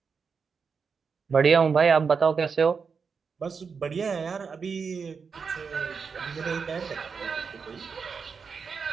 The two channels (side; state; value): left; quieter; 5.6 dB